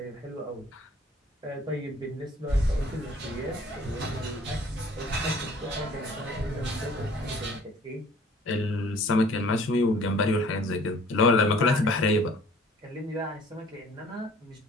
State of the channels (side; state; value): both; normal; correlation 0.53